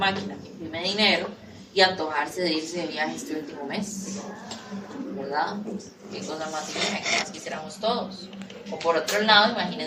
que imprime dinero y antojarse de irse de viaje este último mes, ¿verdad? Qué cosa más divina, que más quisiéramos todos. O por otro lado,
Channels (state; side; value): identical; both; correlation 1.00